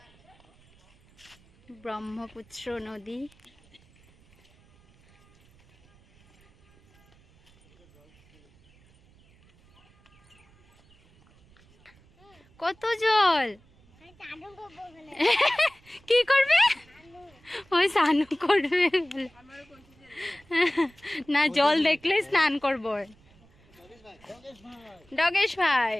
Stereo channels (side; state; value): right; noise; rumble, 29 dB below the sound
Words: ব্রহ্মপুত্র নদী। কত জল! কি করবে? ওই স্নান করবে না, জল দেখলে স্নান করবো। ডগেশ ভাই,